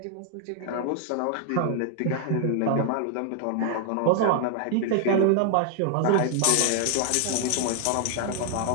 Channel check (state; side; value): different; both; correlation 0.00